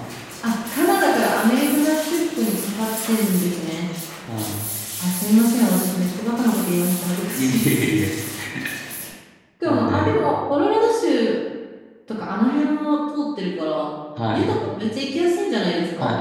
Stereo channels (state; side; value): identical; both; correlation 1.00